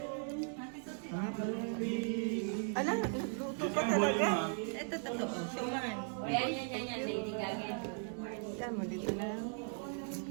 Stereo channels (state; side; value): silent; left; 52 dB below the other